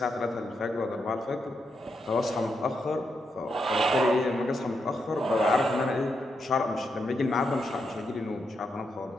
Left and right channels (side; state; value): both; normal; correlation 0.82